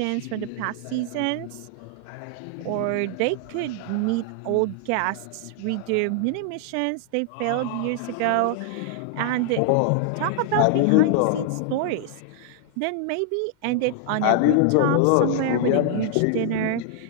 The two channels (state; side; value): different; both; correlation 0.00